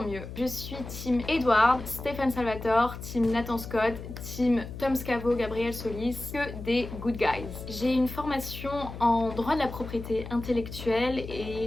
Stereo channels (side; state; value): left; noise; hum, 10 dB below the sound